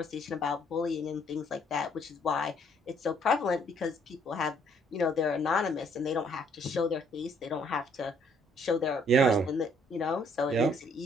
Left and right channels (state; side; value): normal; both; correlation 0.65